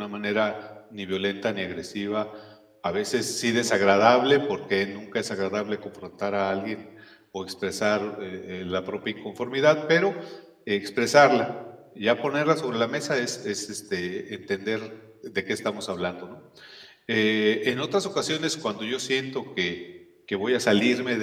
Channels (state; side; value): identical; both; correlation 1.00